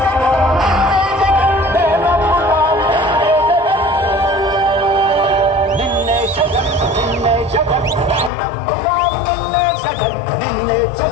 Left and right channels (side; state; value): right; drops out; at 8.3 s